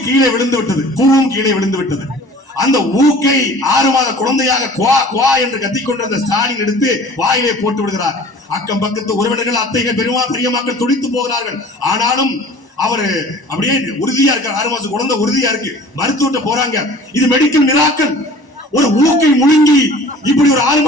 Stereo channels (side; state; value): right; late; 1.0 ms